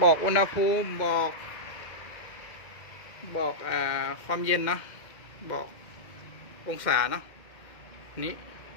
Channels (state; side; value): late; right; 2.1 ms